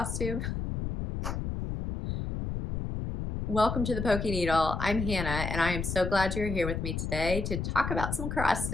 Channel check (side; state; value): left; noise; rumble, 3 dB below the sound